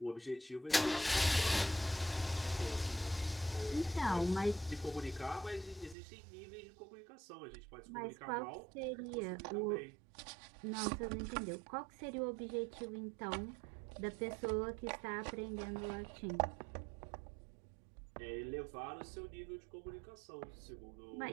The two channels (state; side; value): drops out; left; at 6.0 s